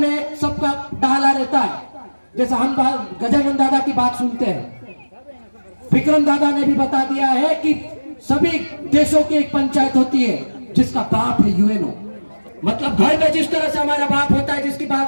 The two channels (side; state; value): both; inverted; correlation -1.00